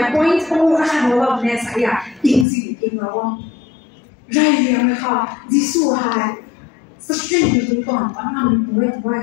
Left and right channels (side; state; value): right; drops out; at 2.5 s